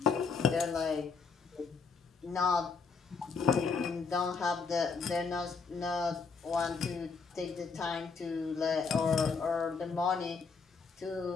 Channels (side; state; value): right; quieter; 5.1 dB